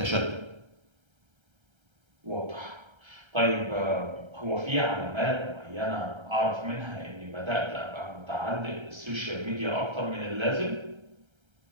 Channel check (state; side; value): late; left; 1.3 ms